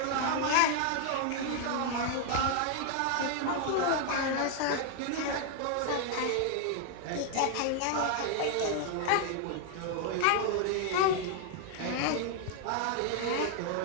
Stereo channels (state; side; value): different; both; correlation 0.00